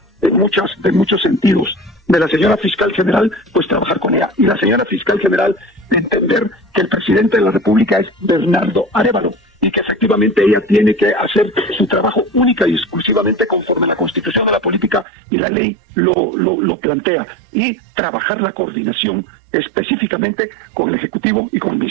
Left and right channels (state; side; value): drops out; left; at 15.1 s